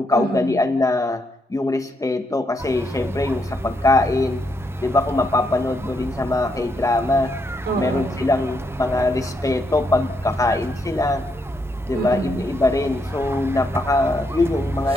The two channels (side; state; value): both; normal; correlation 0.77